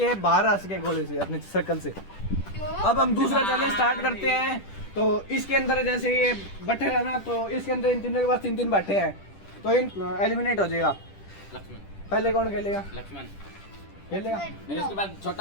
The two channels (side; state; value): right; late; 10 ms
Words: बाहर आ सके गोले से, अपने सर्कल से। अब हम दूसरा चैलेंज स्टार्ट करते हैं। तो इसके अंदर जैसे ये बट्टे है ना, तो इसके अंदर इन तीनों के पास 3-3 बट्टे हैं। तो इन एलिमिनेट हो जाएगा। लक्ष्मण। पहले कौन खेलेगा? लक्ष्मण। खेलेगा फिर उसके बाद